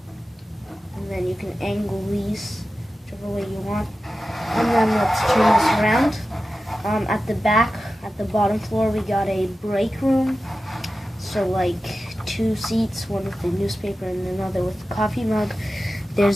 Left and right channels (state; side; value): normal; both; correlation 0.94